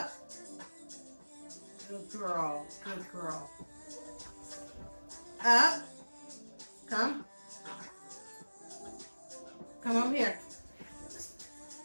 Good girl. Good girl. Up. Come. Come over here.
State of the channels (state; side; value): inverted; both; correlation -1.00